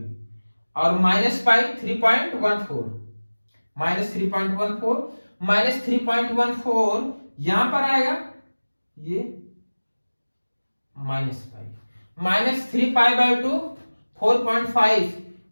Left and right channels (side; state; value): both; inverted; correlation -1.00